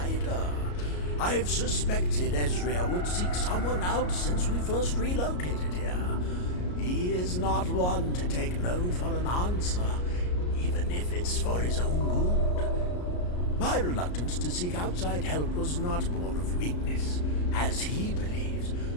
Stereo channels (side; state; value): right; late; 33 ms